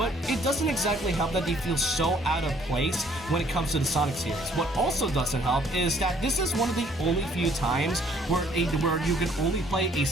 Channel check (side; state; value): both; normal; correlation 0.62